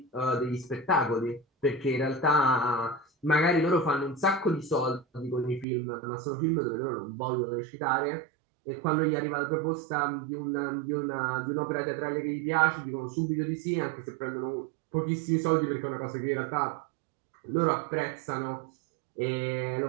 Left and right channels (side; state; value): left; drops out; at 5.7 s